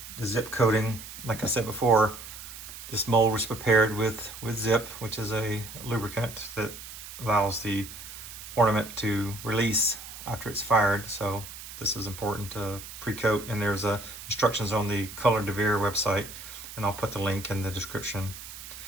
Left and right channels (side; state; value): right; noise; hiss, 13 dB below the sound